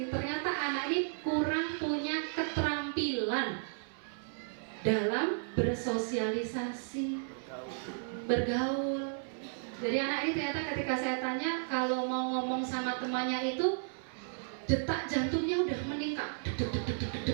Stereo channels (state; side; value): silent; left; 55 dB below the other